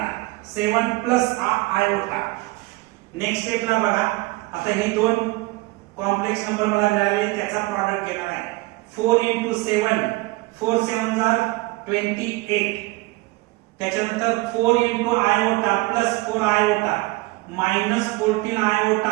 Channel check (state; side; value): quieter; left; 22.1 dB